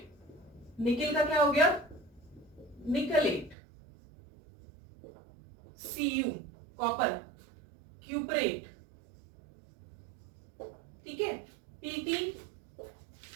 निकल का क्या हो गया, निकलेट, Cu कॉपर, क्यूपरेट, ठीक है, Pt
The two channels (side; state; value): left; drops out; at 3.6 s